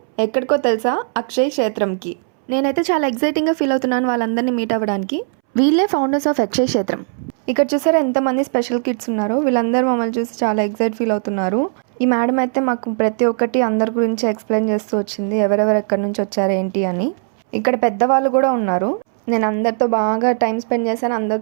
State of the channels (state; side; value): silent; left; 67 dB below the other